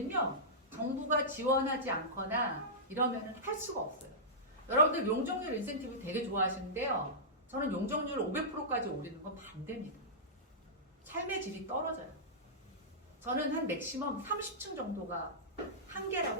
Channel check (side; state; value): both; normal; correlation -0.15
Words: 정부가 지원하지 않거나 이러면은 할 수가 없어요. 여러분들 용적률 인센티브 되게 좋아하시는데요, 저는 용적률 500%까지 올리는 건 반대입니다. 삶의 질이 떨어져요. 저는 한 맥시멈 30층 정도가